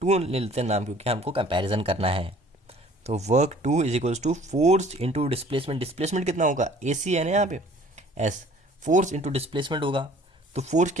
2 ले लेते हैं नाम, क्योंकि हमको कंपैरिजन करना है। तो work 2 is equals to force into displacement. Displacement कितना होगा, AC है ना यहाँ पे, S। फोर्स इंटू डिस्प्लेसमेंट होगा, तो फोर्स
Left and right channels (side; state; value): both; normal; correlation 0.52